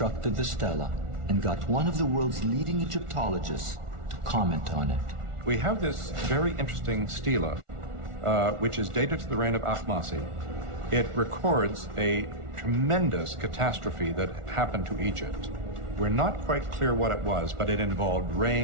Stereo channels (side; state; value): left; late; 1.4 ms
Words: the stela and got one of the world's leading Egyptologists to comment on it. We have this very interesting stela, which is dated to the reign of Ahmose. It records a tremendous catastrophe that happened to Egypt. We're not quite clear what it was, but it involved